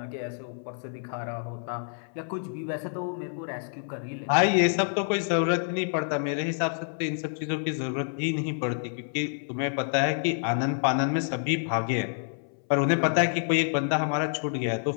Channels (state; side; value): silent; right; 59 dB below the other